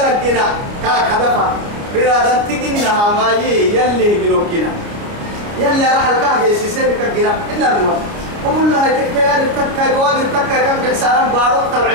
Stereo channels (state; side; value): late; left; 29 ms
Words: لقينا كهدفا بنا نتجنها ما يلي جنو كنا يلي راح الكهجة سيسير كجنا إن الموت وقول لها تكتير تكا جواب تكا كم حسارا بارو